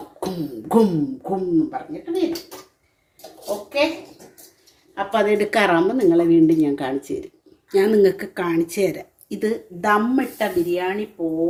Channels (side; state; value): both; identical; correlation 1.00